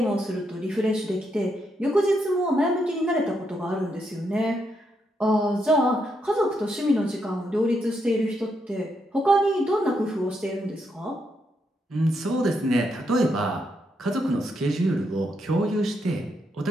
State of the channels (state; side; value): normal; both; correlation 0.79